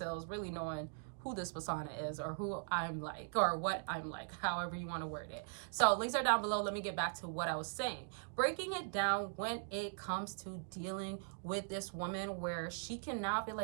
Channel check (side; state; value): left; silent; digital silence